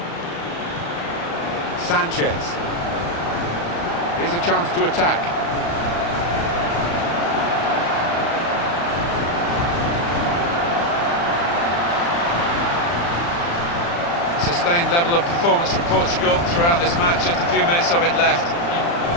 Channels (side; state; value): right; late; 35 ms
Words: Sanchez. Here's a chance to attack. Sustained level of performance from Portugal throughout this match. Just a few minutes of it left.